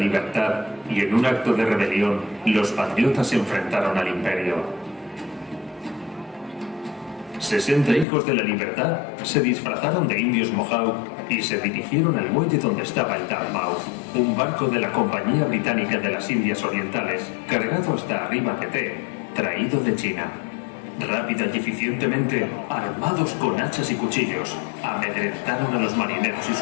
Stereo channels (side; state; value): right; drops out; at 8.1 s